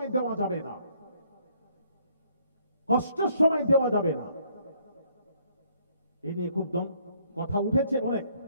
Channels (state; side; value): inverted; both; correlation -0.66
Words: দেওয়া যাবে না, কষ্টের সময় দেওয়া যাবে না। এই নিয়ে খুব কথা উঠেছে অনেক,